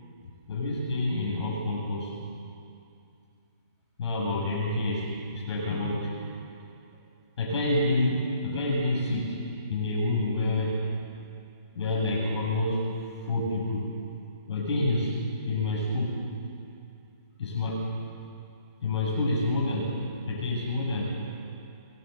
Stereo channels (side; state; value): both; inverted; correlation -0.62